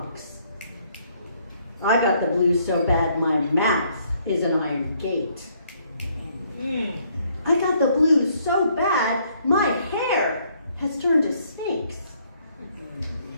I got the blues so bad, my mouth is an iron gate. I got the blues so bad, my hair has turned to snakes.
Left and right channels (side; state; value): both; inverted; correlation -0.67